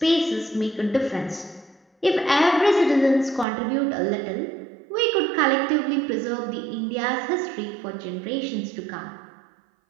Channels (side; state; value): left; drops out; at 3.5 s